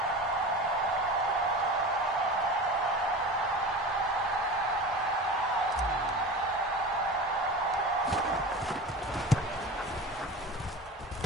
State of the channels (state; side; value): normal; both; correlation 0.32